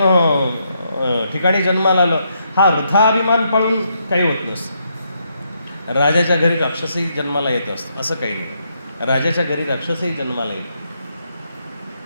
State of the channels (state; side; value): inverted; both; correlation -0.77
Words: ठिकाणी जन्माला आलो, हा अर्थाभिमान पाळून काही होत नसतं. राजाच्या घरी राक्षसही जन्माला येत असतं असं काही नाही. राजाच्या घरी राक्षसही जन्माला येतो.